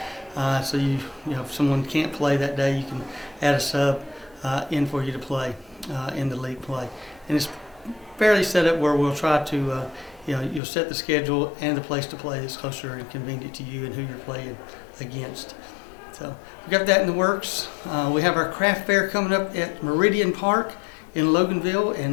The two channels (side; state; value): right; drops out; at 10.6 s